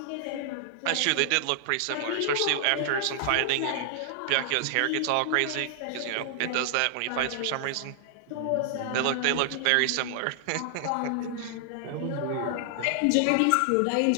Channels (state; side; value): different; both; correlation -0.01